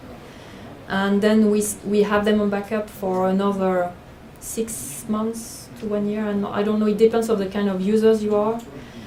And then we have them on backup for another 6 months to 1 year. And I don't know, it depends on the kind of users you are.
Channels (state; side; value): identical; both; correlation 1.00